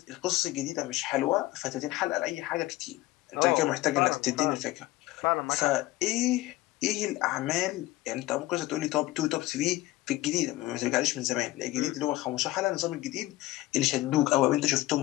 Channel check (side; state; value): right; quieter; 17.7 dB